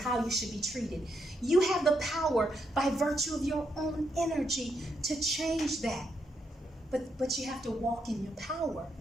you should be treated, you have the power by virtue of your own energy to change that. But you have to walk in your power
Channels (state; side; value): normal; both; correlation 0.79